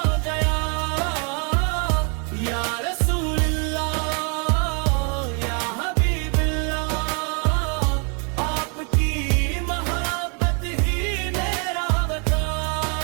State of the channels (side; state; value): left; quieter; 37.5 dB